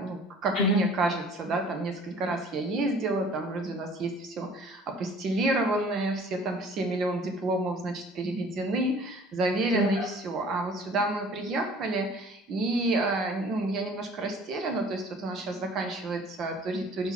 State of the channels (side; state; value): both; normal; correlation 0.51